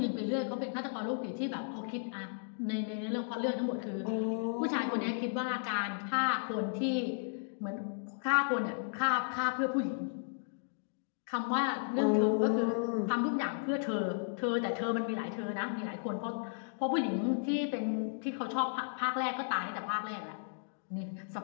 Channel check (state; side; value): silent; right; digital silence